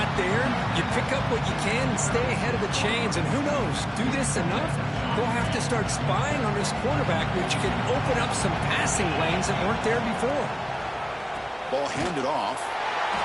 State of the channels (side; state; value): both; identical; correlation 1.00